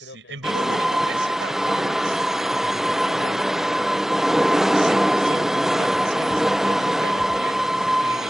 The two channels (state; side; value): normal; both; correlation 0.97